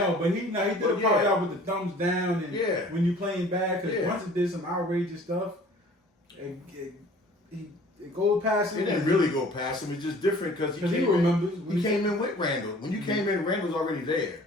but he did a part out with the thumbs down and when you playing bad because Brunson did some outrageous stuff. It goes past him. It didn't really go past him. It's just different because he remembers. He came in with Randall. When you came in, Randall's already there.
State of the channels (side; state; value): both; normal; correlation 0.50